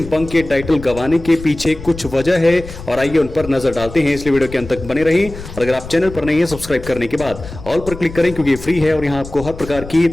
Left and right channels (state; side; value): noise; left; rumble, 13 dB below the sound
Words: पंक के टाइटल गंवाने के पीछे कुछ वजह है और आइए उन पर नजर डालते हैं, इसलिए वीडियो के अंत तक बने रहें। और अगर आप चैनल पर नहीं है, सब्सक्राइब करने के बाद ऑल पर क्लिक करें, क्योंकि ये फ्री है और यहाँ आपको हर प्रकार की